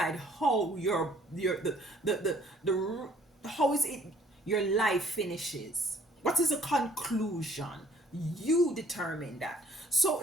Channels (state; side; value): normal; both; correlation 0.59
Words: how how is it your life finishes. What is the conclusion? You determine that. So